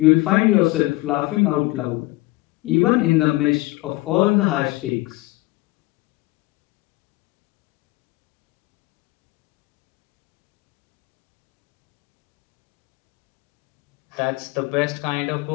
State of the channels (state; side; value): quieter; right; 20.7 dB